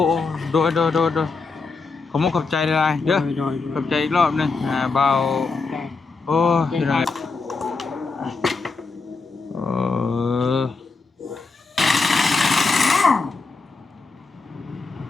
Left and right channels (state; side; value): quieter; right; 4.2 dB